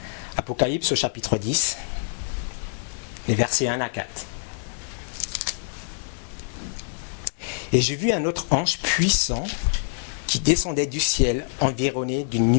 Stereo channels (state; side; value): silent; right; digital silence